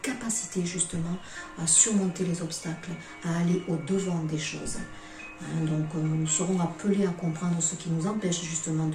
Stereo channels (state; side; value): identical; both; correlation 1.00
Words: capacité justement à surmonter les obstacles, à aller au-devant des choses. Donc, nous serons appelés à comprendre ce qui nous empêche justement